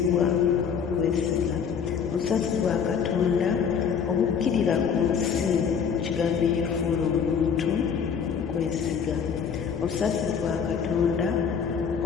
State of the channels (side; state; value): right; quieter; 6.9 dB